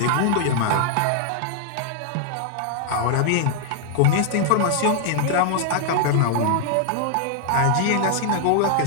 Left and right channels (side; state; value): both; different; correlation 0.00